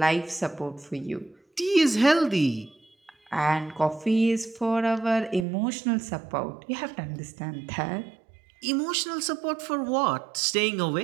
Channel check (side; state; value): left; drops out; at 5.5 s